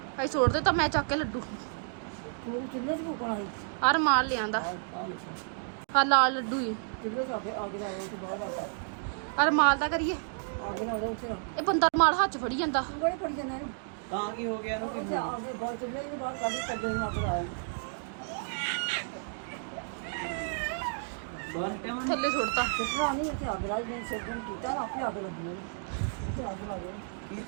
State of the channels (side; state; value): left; silent; digital silence